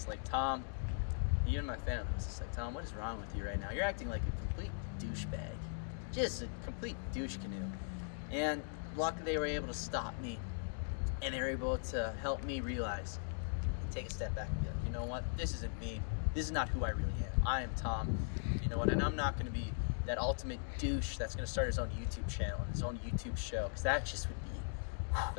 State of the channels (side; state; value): right; silent; digital silence